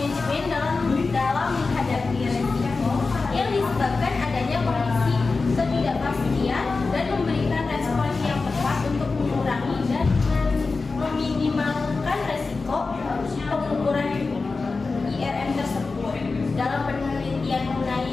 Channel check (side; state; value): right; quieter; 4.0 dB